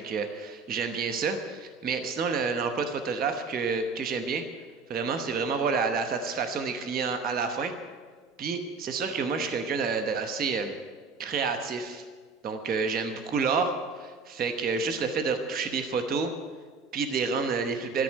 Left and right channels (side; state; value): left; quieter; 4.5 dB